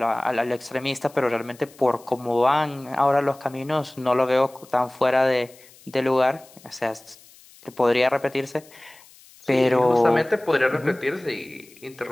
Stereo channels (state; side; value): noise; left; hiss, 25 dB below the sound